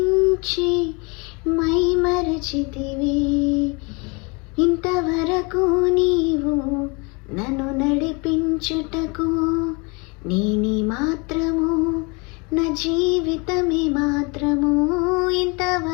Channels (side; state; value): right; quieter; 30.0 dB